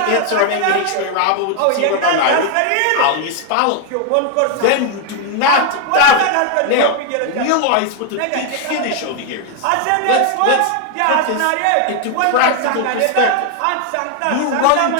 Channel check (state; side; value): different; both; correlation 0.00